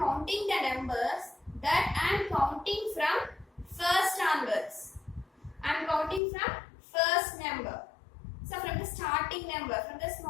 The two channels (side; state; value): right; drops out; at 6.2 s